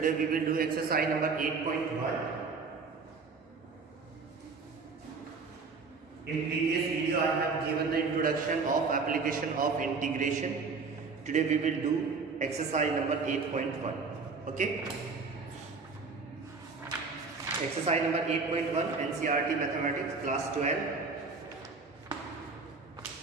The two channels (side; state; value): left; quieter; 4.5 dB